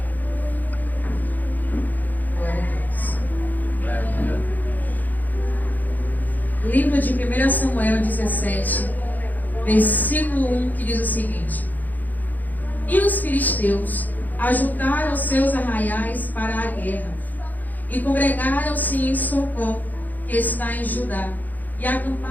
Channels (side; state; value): right; late; 0.083 ms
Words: Glória a Deus. Aleluia. Livro de 1 Samuel 17, versículo 1, que diz o seguinte: E os filisteus ajuntaram seus arraiais para a guerra, e congregaram-se em Socó, que está em Judá, e